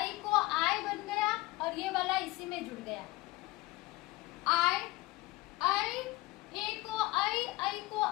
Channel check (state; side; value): quieter; right; 19.8 dB